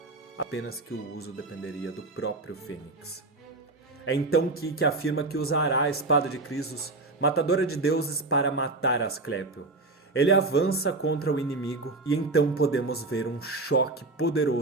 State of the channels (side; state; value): left; quieter; 3.3 dB